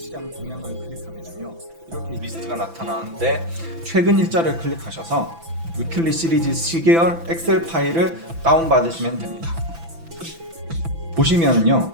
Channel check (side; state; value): left; late; 6.0 ms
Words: 동향을 클릭하면요, 이렇게 리스트가 나타나는데 최근 일자를 클릭하셔서 위클리 시리즈 시계열 엑셀 파일을 다운받으시면 됩니다. 보시면은요,